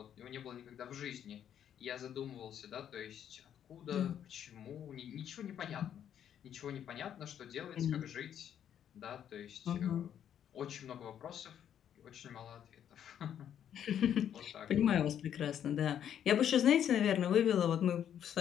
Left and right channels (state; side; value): quieter; right; 9.6 dB